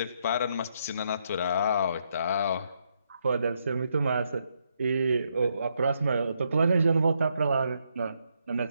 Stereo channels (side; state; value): both; inverted; correlation -0.77